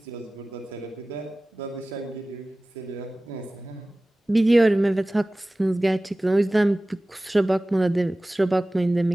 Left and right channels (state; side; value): normal; both; correlation 0.97